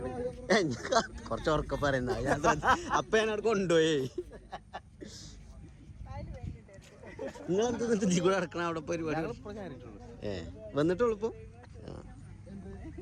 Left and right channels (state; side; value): identical; both; correlation 1.00